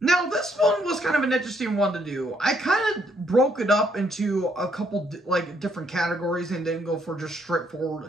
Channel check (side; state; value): both; normal; correlation 0.71